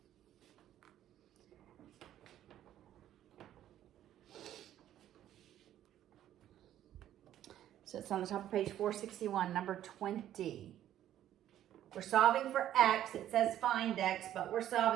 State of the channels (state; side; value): quieter; left; 11.9 dB